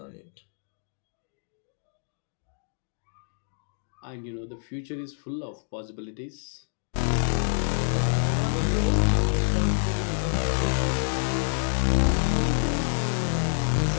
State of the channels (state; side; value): silent; right; digital silence